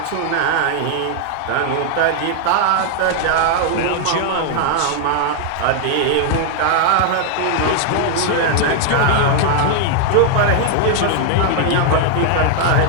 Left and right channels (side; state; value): both; different; correlation 0.00